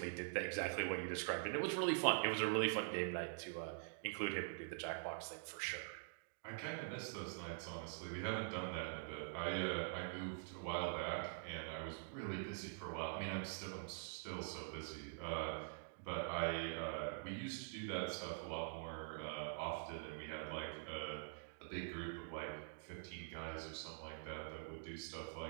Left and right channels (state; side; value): silent; left; digital silence